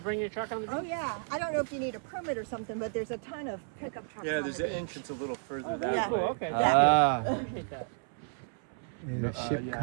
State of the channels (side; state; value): left; silent; 56 dB below the other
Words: your truck on the beach? Oh yeah, I don't know if you need a permit or something, but there's a ton of pickup trucks on the beach. entrance a little further that Yeah. Cool, okay. Appreciate that. There's a ship Yeah,